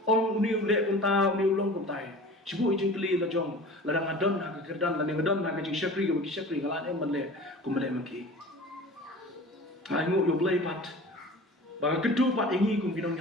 ong ni le kunta ni ulong kuntai sibu ijing kli la jong la dang adon ha ka kerdan la ngadon ha ka jing shakri ka shakri ngala em manle kumle maki ai ngu yo blay pat ba kedu pat ingi kum kinong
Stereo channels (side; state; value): both; normal; correlation 0.40